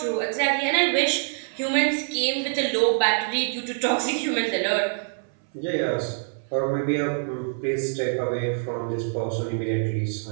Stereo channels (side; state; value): left; silent; 62 dB below the other